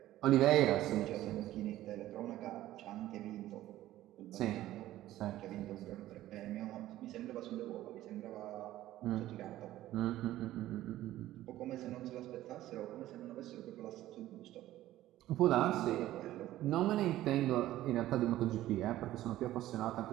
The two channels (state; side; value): quieter; left; 14.6 dB